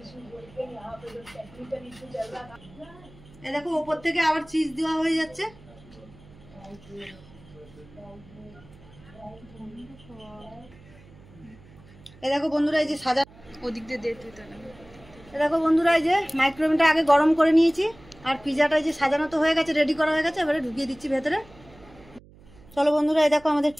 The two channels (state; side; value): noise; right; hum, 23 dB below the sound